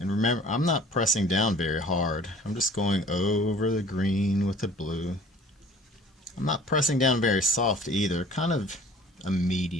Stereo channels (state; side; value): normal; both; correlation 0.49